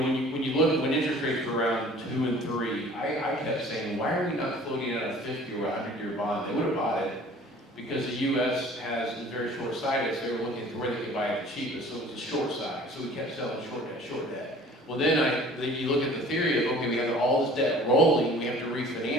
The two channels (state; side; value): normal; both; correlation 0.49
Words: when you look at when interest rates were around 2 and 3, I kept saying, why are we not floating out a 50 or 100-year bond? They would have bought it because the U.S. has a very short side, so they were looking at where they could buy it the cheapest, so it was a short side, so we kept selling short debt. Well, then you look at the theory of, okay, we have all this debt rolling, we have to